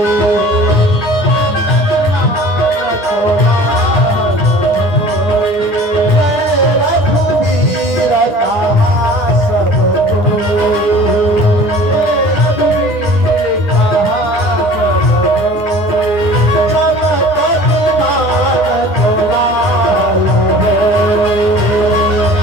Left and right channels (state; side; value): late; right; 9.8 ms